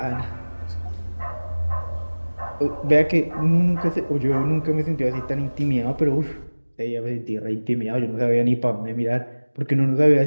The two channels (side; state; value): both; inverted; correlation -1.00